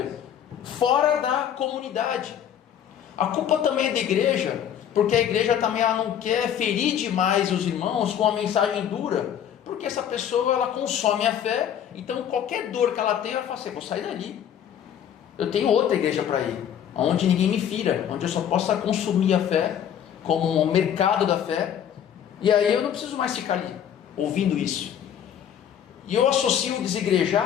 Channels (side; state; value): right; quieter; 9.4 dB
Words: fora da comunidade. A culpa também é da igreja, porque a igreja também ela não quer ferir demais os irmãos com uma mensagem dura, porque essa pessoa ela consome a fé, então qualquer dor que ela tem, ela fala assim, vou sair dali, eu tenho outra igreja para ir, onde ninguém me fira, onde eu só possa consumir a fé, como um mercado da fé, e aí eu não preciso mais ficar ali, ouvindo isso. E eu associo o